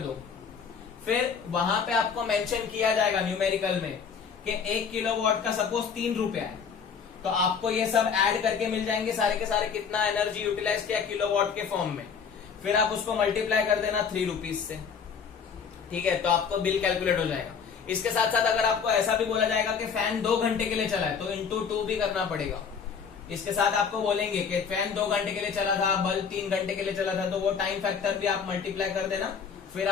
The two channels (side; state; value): right; quieter; 6.4 dB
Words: फिर वहां पे आपको मेंशन किया जाएगा न्यूमेरिकल में कि 1 किलोवाट का सपोज 3 रुपया है, तो आपको ये सब ऐड करके मिल जाएंगे सारे के सारे कितना एनर्जी यूटिलाइज किया किलोवाट के फॉर्म में। फिर आप उसको मल्टीप्लाई कर देना 3 रुपीज से, ठीक है, तो आपको बिल कैलकुलेट हो जाएगा। इसके साथ साथ अगर आपको ऐसा भी बोला जाएगा कि फैन 2 घंटे के लिए चला है, तो इंटू 2 भी करना पड़ेगा। इसके साथ आपको बोलेंगे कि फैन 2 घंटे के लिए चला था, बल्ब 3 घंटे के लिए चला था, तो वो टाइम फैक्टर भी आप मल्टीप्लाई कर देना। फिर